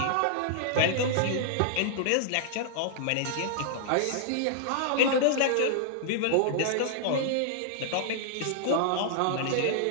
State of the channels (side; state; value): both; different; correlation -0.01